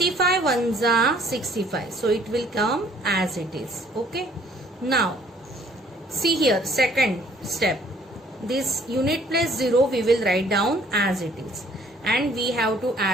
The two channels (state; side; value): normal; both; correlation 0.59